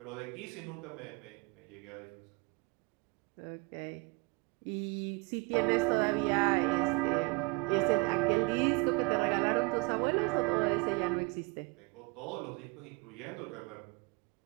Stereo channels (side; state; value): left; quieter; 27.8 dB